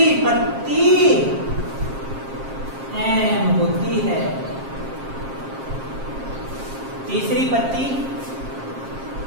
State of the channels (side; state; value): left; late; 7.5 ms